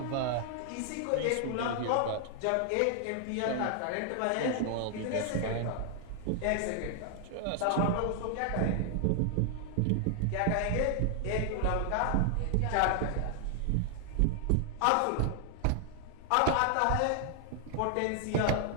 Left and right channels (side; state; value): both; different; correlation 0.00